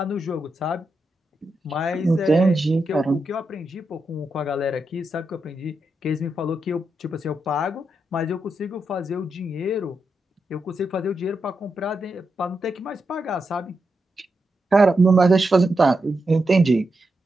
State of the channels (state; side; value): normal; both; correlation 0.85